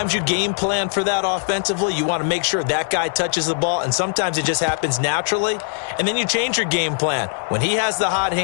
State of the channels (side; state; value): right; silent; digital silence